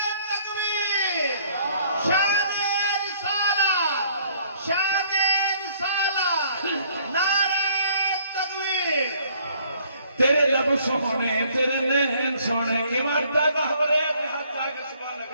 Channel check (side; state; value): both; inverted; correlation -0.61